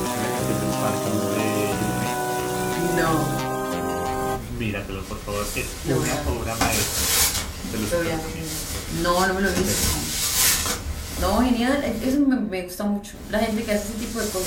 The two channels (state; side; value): identical; both; correlation 1.00